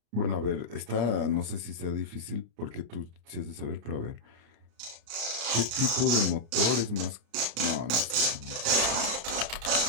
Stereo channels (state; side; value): late; left; 35 ms